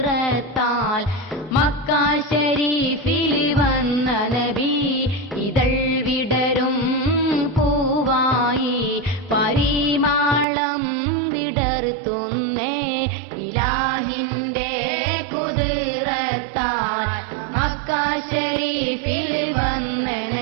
Mecca ശരീഫിൽ വന്ന നബി ഇതൾ വിടരും പൂവായി പരിമാളം വിടർത്തുന്നേ ഇലാഹിന്റെ കുദ്റത്താൽ മക്ക ശരീഫിൽ വന്ന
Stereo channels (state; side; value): drops out; left; at 10.5 s